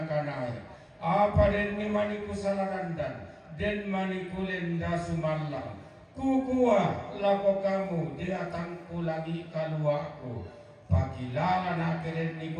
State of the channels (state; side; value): identical; both; correlation 1.00